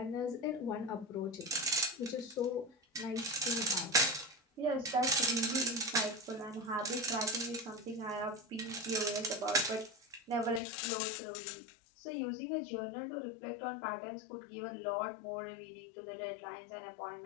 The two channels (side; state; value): right; drops out; at 10.6 s